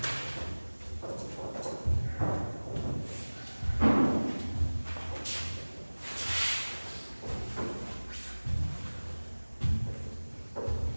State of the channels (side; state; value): both; inverted; correlation -1.00